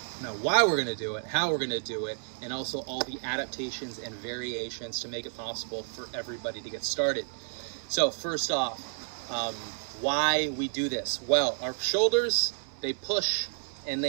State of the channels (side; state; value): left; silent; 57 dB below the other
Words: why we're going to do it, how we're going to do it, and also all the adaptations and variations to make it possible for everybody to get started. So first off, why we do this? Well, our shoulders, they push and